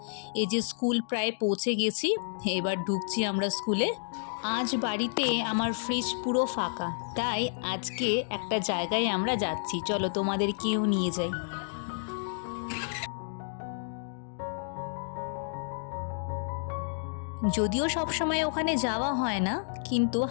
এই যে স্কুল প্রায় পৌঁছে গেছি, এবার ঢুকছি আমরা স্কুলে। আজ বাড়িতে আমার ফ্রিজ পুরো ফাঁকা, তাই আজকে একটা জায়গায় আমরা যাচ্ছি, চলো তোমাদেরকেও নিয়ে যাই। যদিও সবসময় ওখানে যাওয়া হয় না, কিন্তু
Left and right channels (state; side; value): silent; right; digital silence